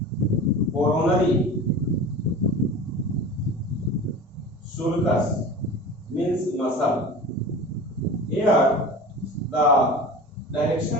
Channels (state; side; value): normal; both; correlation 0.35